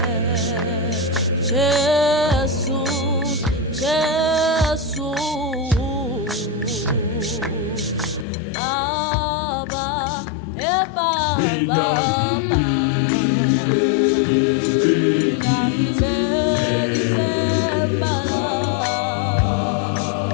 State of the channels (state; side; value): drops out; right; at 8.2 s